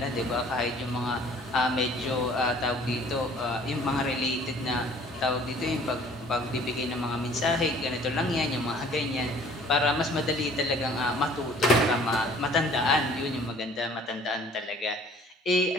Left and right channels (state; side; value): normal; both; correlation 0.53